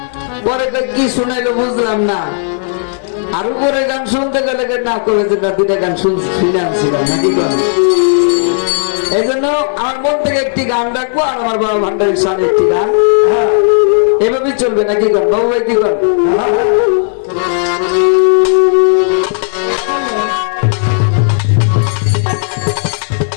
পরে কি শুনাইলো বুঝলাম না, আর উপরে গান শুনতে গেলে না করে যে দুইটা গান শুনে আনছিলাম নাকি কর। এই জন্য আমার মন থেকে একটি গান রাখবো আর আমার বাবা ভান্ডারের সামনে একটি গান, এভাবেই চলবে নাকি কর বাবু ভাই, কি কর?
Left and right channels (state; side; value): silent; right; digital silence